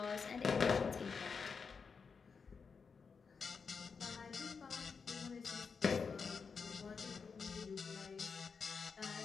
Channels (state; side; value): quieter; right; 5.4 dB